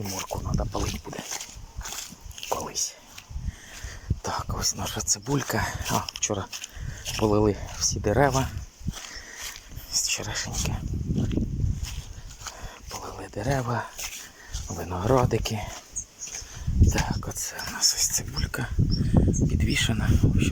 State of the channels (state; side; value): identical; both; correlation 1.00